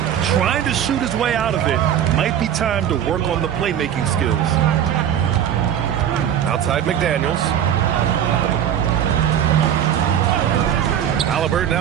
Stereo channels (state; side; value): quieter; left; 9.8 dB